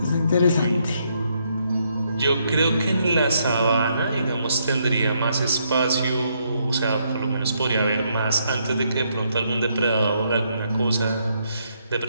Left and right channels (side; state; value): both; inverted; correlation -0.74